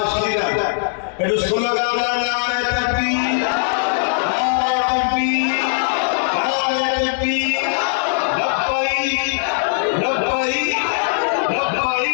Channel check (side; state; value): right; silent; digital silence